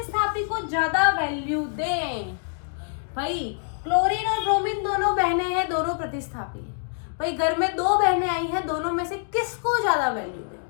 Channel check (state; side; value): silent; right; digital silence